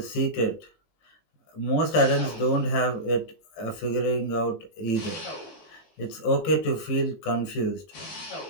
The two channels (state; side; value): late; right; 20 ms